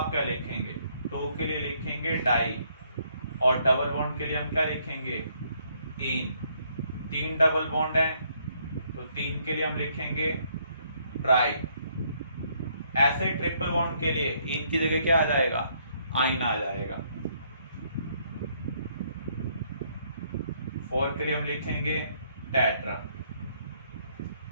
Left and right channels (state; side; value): inverted; both; correlation -0.69